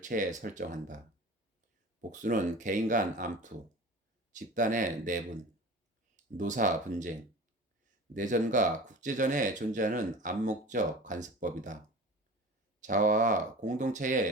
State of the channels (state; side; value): normal; both; correlation 0.37